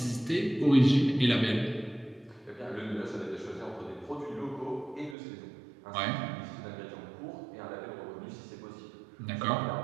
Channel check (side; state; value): left; drops out; at 5.2 s